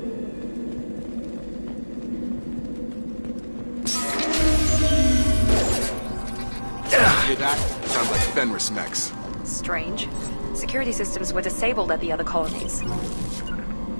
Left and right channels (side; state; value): both; inverted; correlation -1.00